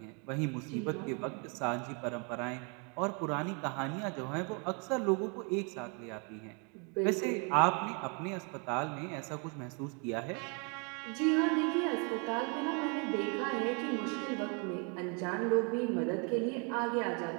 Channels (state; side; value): quieter; left; 35.4 dB